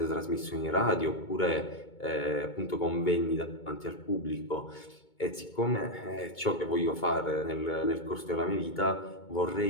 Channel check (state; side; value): late; right; 2.2 ms